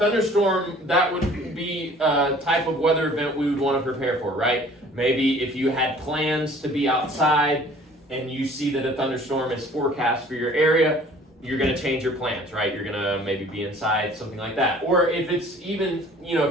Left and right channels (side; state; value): both; normal; correlation 0.51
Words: that would be a type of weather event we would want to prepare for, right? Maybe if you had plans to be outside and you see that a thunderstorm is forecast for your area, you're going to change your plans, right? You're going to maybe be inside, something like that. Or if it's even,